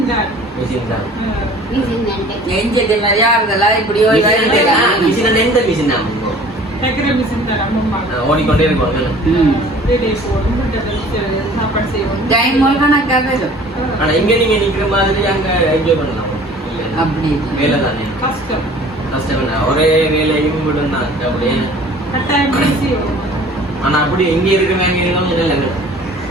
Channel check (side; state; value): both; normal; correlation 0.48